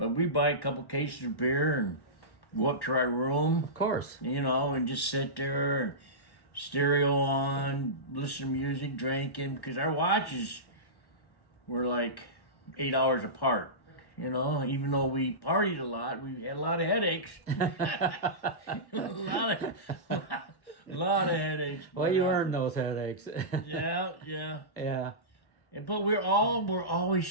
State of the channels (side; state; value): right; late; 1.1 ms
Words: we buy a couple cases of beer and go up to our room. Of course. You know, and just sit there and stereo on, listen to music, drinking, because our watches were like 8 hours apart. You know, even though we partied a lot, we had a lot of headaches. a lot of headaches. Well, you earned those headaches. Yeah. But we're always